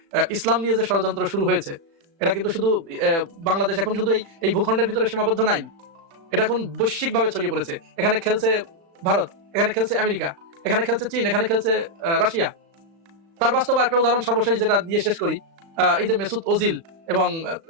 ইসলাম নিয়ে যে ষড়যন্ত্র শুরু হয়েছে, এটা কিন্তু শুধু বাংলাদেশ এখন শুধু এই ভূখণ্ডের ভিতরে সীমাবদ্ধ নাই, এটা এখন বৈশ্বিকভাবে ছড়িয়ে পড়েছে। এখানে খেলছে ভারত, এখানে খেলছে আমেরিকা, এখানে খেলছে চীন, এখানে খেলছে রাশিয়া। তার বাস্তব একটা উদাহরণ সর্বশেষ যেটা দিয়ে শেষ করি, এই যে মেসুত ওজিল এবং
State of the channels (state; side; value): late; left; 36 ms